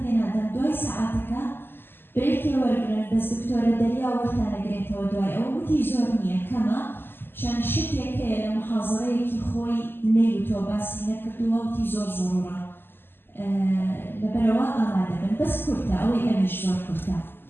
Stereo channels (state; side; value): late; right; 0.10 ms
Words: هذا دوي ساعاتك بريك يورجن بس دكتورة دليا وقتنا قريت ودواي أو تيزورنيا كما شان شتيك لمحاضريك خوي نيوتو بس نكتوا وتيزور ضرورة لبروا أنا دبن بس كرتا أو يمش زور كرتا